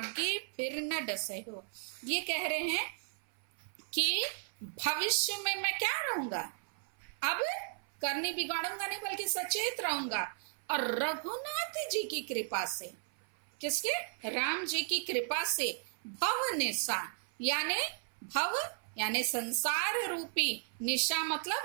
फिर न डसे हो। ये कह रहे हैं कि भविष्य में मैं क्या रहूंगा? अब करनी बिगाड़ूंगा नहीं, बल्कि सचेत रहूंगा। और रघुनाथ जी की कृपा से, किसके? राम जी की कृपा से भव निशा, यानी भव यानी संसार रूपी, निशा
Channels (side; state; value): left; silent; 54 dB below the other